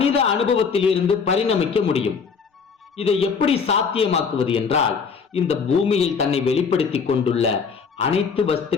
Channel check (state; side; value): quieter; right; 5.7 dB